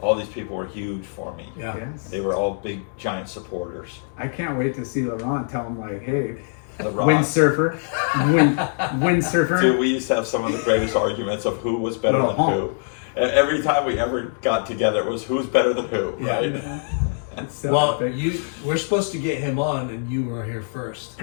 all these people were huge for me. Yeah. Yes. They were all big, giant supporters. I can't wait to see Laurent tell him, like, hey, The Rock. windsurfer, windsurfer. Dude, we used to have some of the greatest arguments of who was better than Uh-huh. who. And every time we ever got together, it was who's better than who, right? That's so Well, epic. we're supposed to get him on, and you were here first.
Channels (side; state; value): right; silent; digital silence